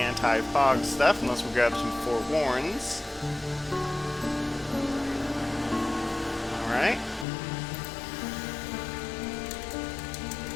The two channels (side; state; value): right; drops out; at 7.2 s